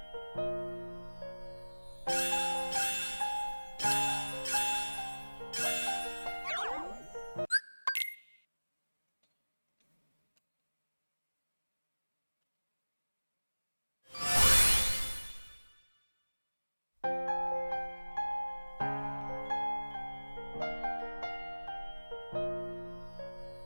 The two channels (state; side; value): inverted; both; correlation -1.00